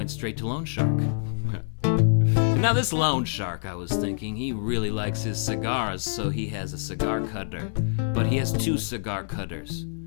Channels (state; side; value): silent; right; 61 dB below the other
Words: straight to loan shark. Now this loan shark, I was thinking, he really likes his cigars, so he has a cigar cutter, but he has 2 cigar cutters.